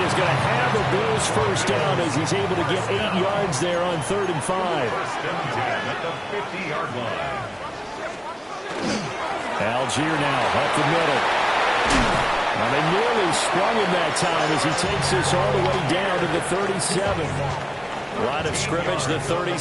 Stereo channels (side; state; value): both; identical; correlation 1.00